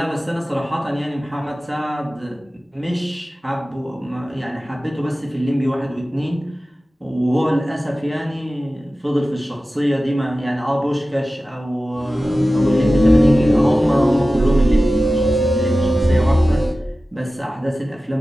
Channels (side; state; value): both; normal; correlation 0.95